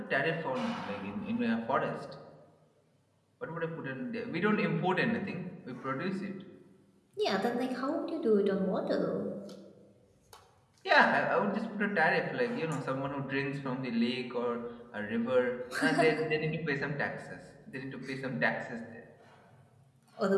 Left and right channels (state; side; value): identical; both; correlation 1.00